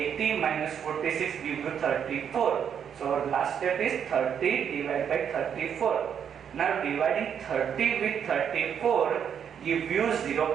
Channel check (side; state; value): left; quieter; 8.1 dB